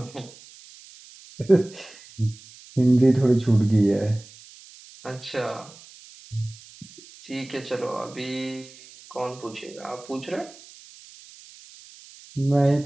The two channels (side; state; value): right; noise; hiss, 21 dB below the sound